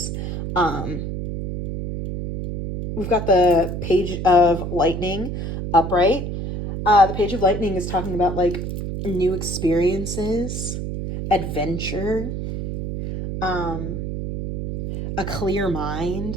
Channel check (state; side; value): noise; right; hum, 4 dB below the sound